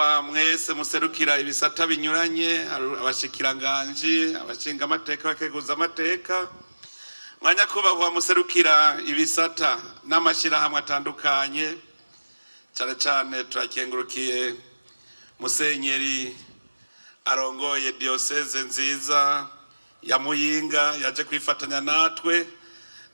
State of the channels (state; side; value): inverted; both; correlation -1.00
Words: mwese muserukira ibisata binyuranye, abashikiranganje, abashingamateka, abakenguzamateka, mwa nyakubahwa muserukira ibisata n'amashirahamwe atandukanye, cyane cyane turakengurukiye musenyeri arongoye diocese nziza ya Muyinga yaje kwifatanya natwe